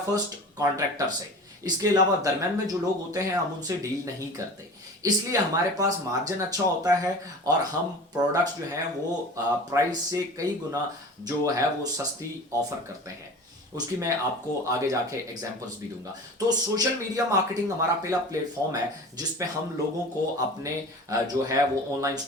कॉन्ट्रैक्टर से। इसके अलावा दरम्यान में जो लोग होते हैं हम उनसे डील नहीं करते, इसलिए हमारे पास मार्जिन अच्छा होता है और हम प्रोडक्ट्स जो हैं वो प्राइस से कई गुना जो है वो सस्ती ऑफर करते हैं। उसकी मैं आपको आगे जाके एग्जांपल्स भी दूंगा। तो सोशल मीडिया मार्केटिंग हमारा पहला प्लेटफॉर्म है जिसपे हम लोगों को अपने जो है वो ऑनलाइन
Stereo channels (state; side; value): normal; both; correlation 0.37